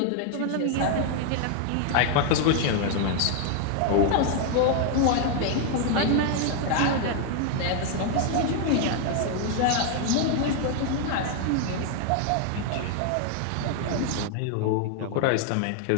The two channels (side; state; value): both; different; correlation 0.00